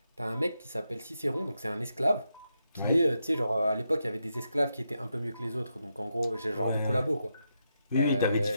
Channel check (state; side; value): inverted; both; correlation -0.84